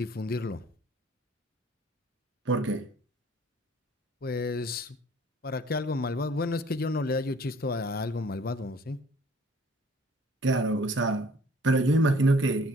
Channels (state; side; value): normal; both; correlation 0.55